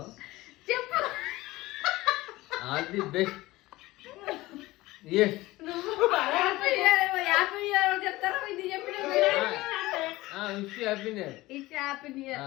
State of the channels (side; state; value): right; quieter; 18.9 dB